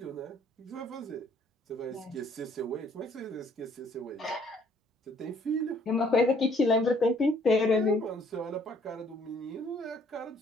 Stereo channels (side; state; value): both; normal; correlation 0.62